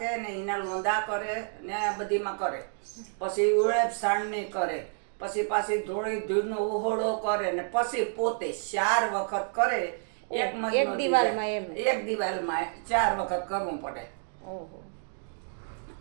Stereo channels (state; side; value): silent; left; 58 dB below the other